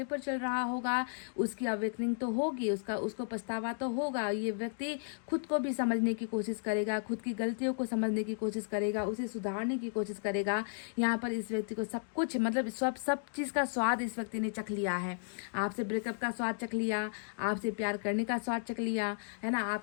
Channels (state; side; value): silent; right; digital silence